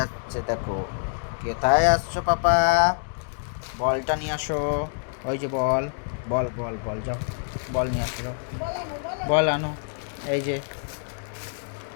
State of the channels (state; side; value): silent; right; digital silence